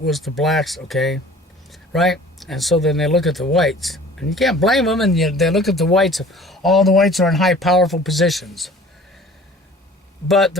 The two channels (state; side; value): normal; both; correlation 0.47